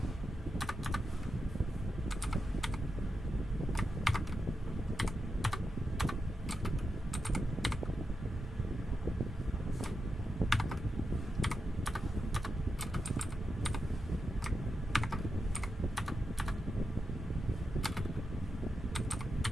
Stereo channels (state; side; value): normal; both; correlation 0.87